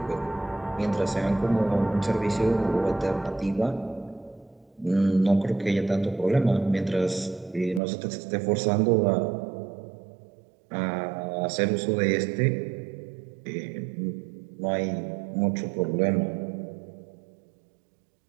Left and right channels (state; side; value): drops out; left; at 7.8 s